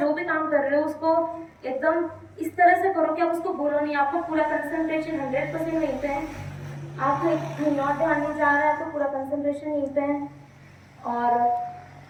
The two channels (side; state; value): both; identical; correlation 1.00